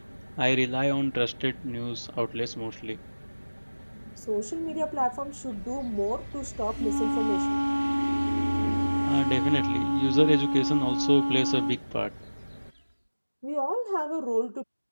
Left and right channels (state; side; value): inverted; both; correlation -1.00